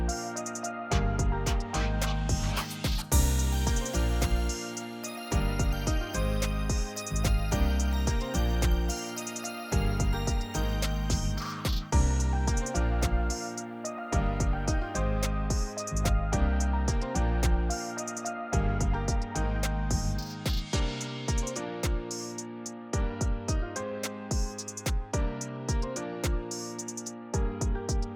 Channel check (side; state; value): both; identical; correlation 1.00